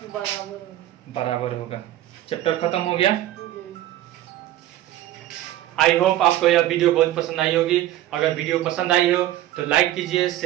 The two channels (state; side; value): quieter; left; 13.9 dB